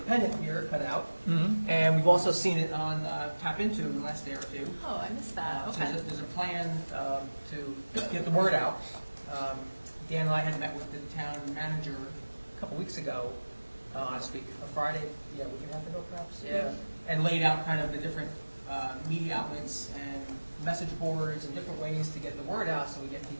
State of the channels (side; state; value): both; inverted; correlation -1.00